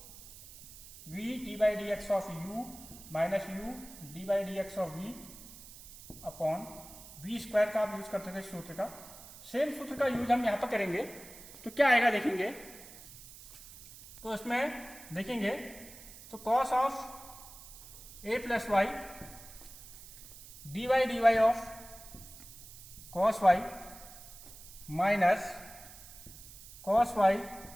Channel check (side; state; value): right; noise; hiss, 17 dB below the sound